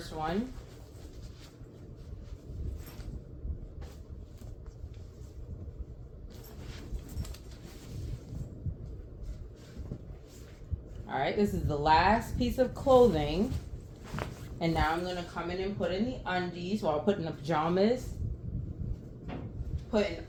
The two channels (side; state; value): both; identical; correlation 1.00